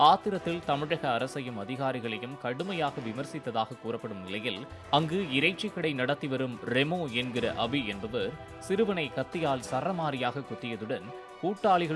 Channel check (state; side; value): identical; both; correlation 1.00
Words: ஆத்திரத்தில் தமிழக அரசையும் அதிகாரிகளையும் கடுமையாக விமர்சித்ததாக கூறப்படும் நிலையில் அங்கு இறைச்சி கடை நடத்தி வரும் ரெமோ என்கிற அபி என்பவர் சிறுவனை கத்தியால் சரமாரியாக குத்தியதுடன்